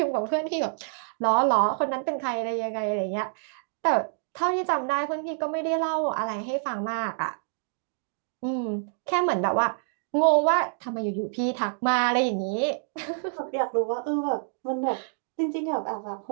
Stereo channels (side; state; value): left; silent; digital silence